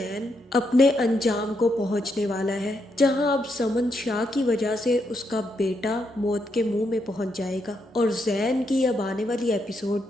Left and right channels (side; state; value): both; normal; correlation 0.80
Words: अपने अंजाम को पहुंचने वाला है, जहां अब समन शाह की वजह से उसका बेटा मौत के मुंह में पहुंच जाएगा और ज़ैन की अब आने वाली एपिसोड